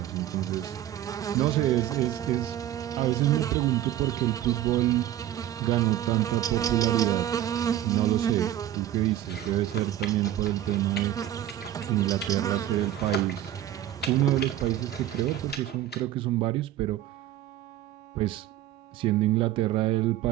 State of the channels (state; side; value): quieter; left; 12.4 dB